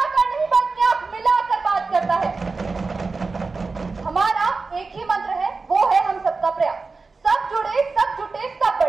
नहीं बल्कि आंख मिलाकर बात करता है। हमारा एक ही मंत्र है, वो है हम सबका प्रयास। सब जुड़े, सब जुटे, सब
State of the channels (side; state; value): left; quieter; 4.1 dB